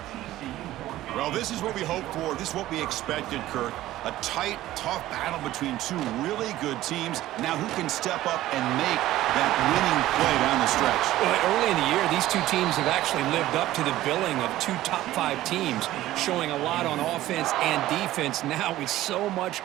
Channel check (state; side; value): quieter; left; 15.1 dB